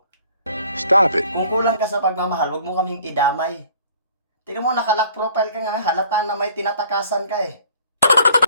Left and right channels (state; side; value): inverted; both; correlation -0.55